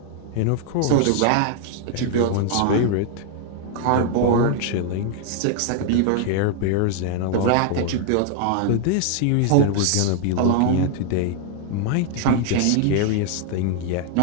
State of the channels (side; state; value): both; different; correlation 0.00